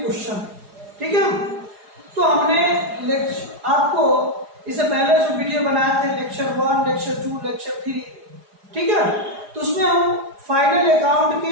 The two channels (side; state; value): left; late; 4.9 ms